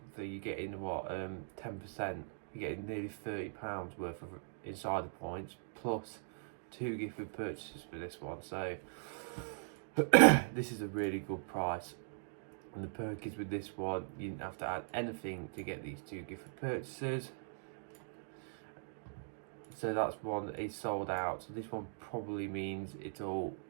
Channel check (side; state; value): left; silent; digital silence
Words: So you're getting what, 10%. You're getting nearly £30 worth of insider points plus 2 gifted purchases for this one. So this is a really good price. And the perk is with this one, you didn't have to add anything to get these 2 gifted purchases. So that's one that is sold out. So this one probably means it'll